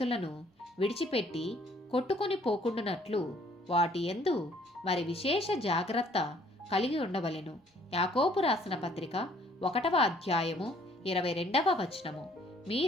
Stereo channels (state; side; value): normal; both; correlation 0.61